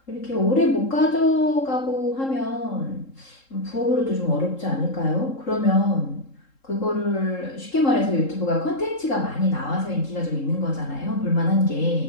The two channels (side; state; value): right; late; 3.7 ms